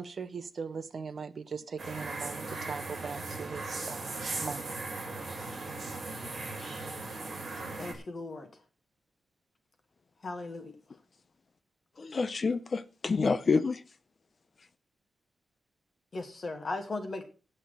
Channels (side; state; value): both; normal; correlation 0.87